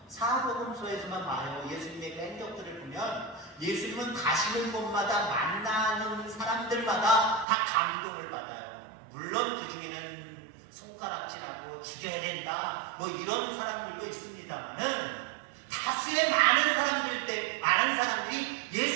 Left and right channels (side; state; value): left; drops out; at 7.5 s